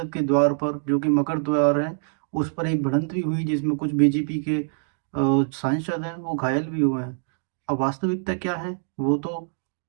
के द्वार पर, जो कि मकर द्वार है, उस पर एक भिड़ंत भी हुई, जिसमें कुछ बीजेपी के सांसद हैं, वो घायल भी हुए हैं। अब वास्तविकता क्या है, वो तो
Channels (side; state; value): left; silent; digital silence